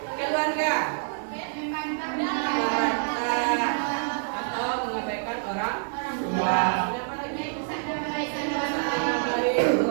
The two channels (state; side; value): silent; left; 60 dB below the other